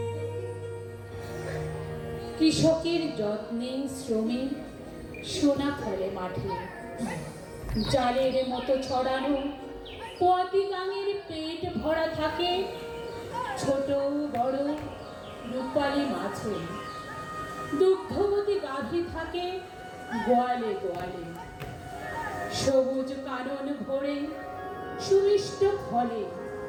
কৃষকের যত্নে শ্রমে সোনা ফলে মাঠে, জালের মতো ছড়ানো পতি গাঙের পেট ভরা থাকে ছোট বড় রূপালী মাছে। দুগ্ধবতী গাভী থাকে গোয়ালে গোয়ালে। সবুজ কানন ভরে সুমিষ্ট ফলে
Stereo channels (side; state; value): both; identical; correlation 1.00